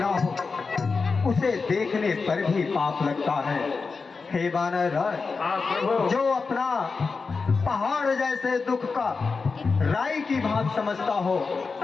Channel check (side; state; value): right; quieter; 4.6 dB